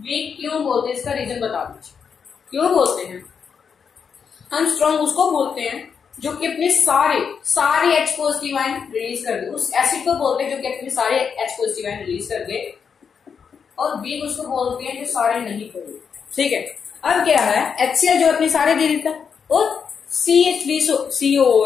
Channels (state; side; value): quieter; right; 6.5 dB